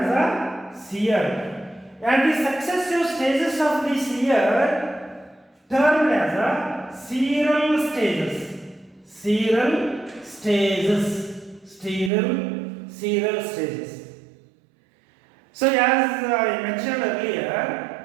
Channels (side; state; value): left; drops out; at 12.1 s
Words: a seer. And the successive stages of this year termed as a seral stages. So as I mentioned